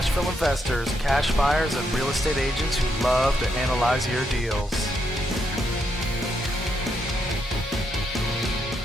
investors, cash buyers, and real estate agents who love to analyze your deals.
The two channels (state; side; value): normal; both; correlation 0.79